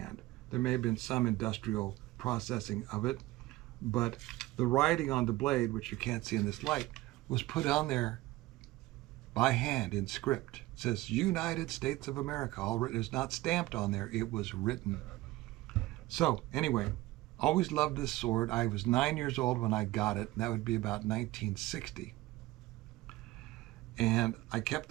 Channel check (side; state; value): left; quieter; 18.2 dB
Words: There may have been some industrial processing of it, but the writing on the blade, which you can't see in this light, was put on there by hand in script. It says United States of America. All written. It's not stamped on there. It was written. So anyway, always loved this sword. I was 9 years old when I got it. And that would be about 1960. And I kept